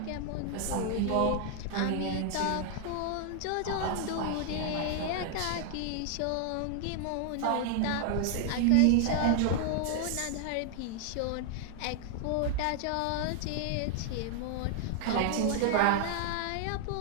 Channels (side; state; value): both; different; correlation 0.00